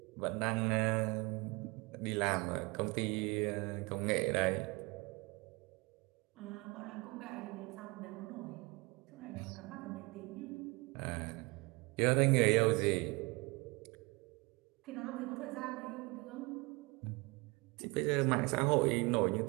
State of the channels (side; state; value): left; quieter; 26.4 dB